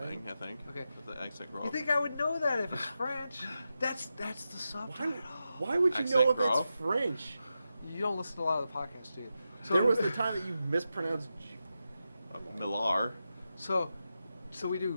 thing, I think. Okay. The accent grave. You think I would know that if it's French? That's the subtitle. Why would you Accent know if it's grave? French? You don't listen to a lot of the podcasts, do you? So, There was the time that you mispronounced. Millar. So we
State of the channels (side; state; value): both; inverted; correlation -0.89